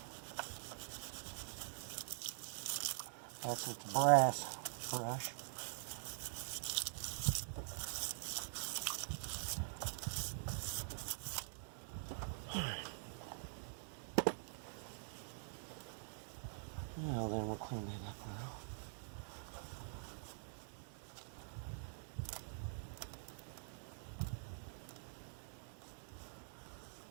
That's with the brass brush. Now then, we'll clean that up now.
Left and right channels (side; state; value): left; silent; digital silence